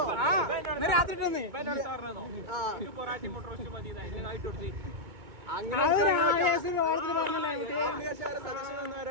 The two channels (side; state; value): left; late; 2.2 ms